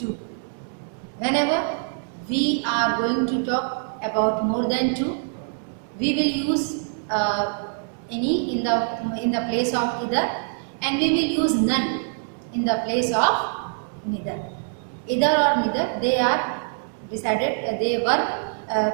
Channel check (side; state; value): left; silent; digital silence